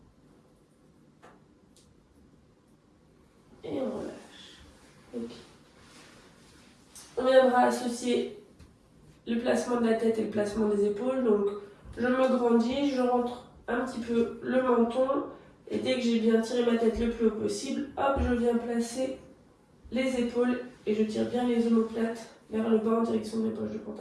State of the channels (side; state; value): both; identical; correlation 1.00